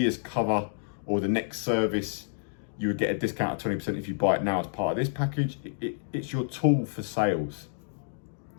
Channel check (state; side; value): silent; right; digital silence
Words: cover or the next service, you would get a discount of 20% if you buy it now as part of this package. It's your tool for sales.